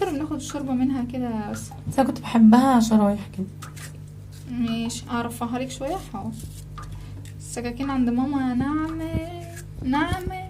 وبناخد الشوربه منها كده بس انا كنت بحبها شرايح كده. ماشي اعرفها لك شويه. حاضر. السكاكين عند ماما ناعمه.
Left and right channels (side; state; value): both; identical; correlation 1.00